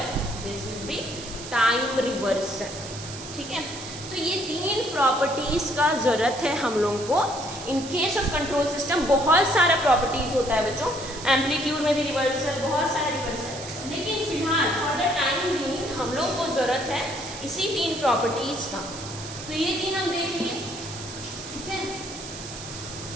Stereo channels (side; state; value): right; noise; hiss, 12 dB below the sound